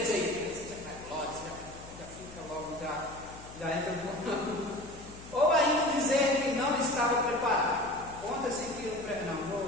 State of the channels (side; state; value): left; noise; hum, 17 dB below the sound